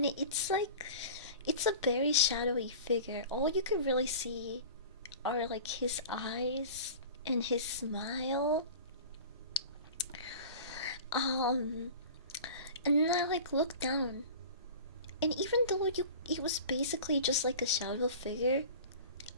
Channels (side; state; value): both; inverted; correlation -0.38